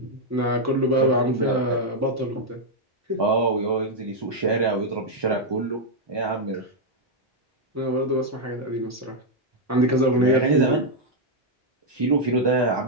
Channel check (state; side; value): normal; both; correlation -0.01